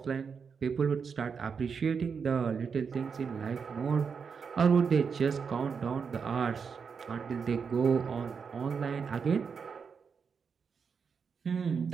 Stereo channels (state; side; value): quieter; left; 6.0 dB